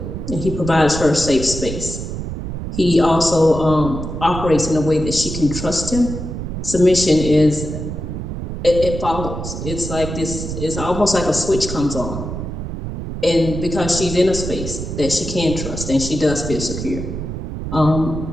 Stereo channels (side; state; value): right; noise; rumble, 6 dB below the sound